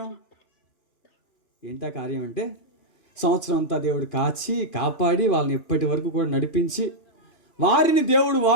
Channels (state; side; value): late; right; 2.5 ms